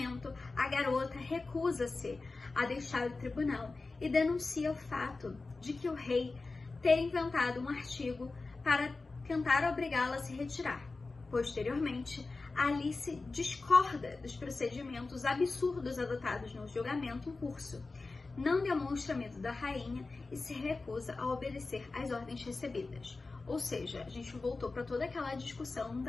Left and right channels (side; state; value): right; quieter; 3.7 dB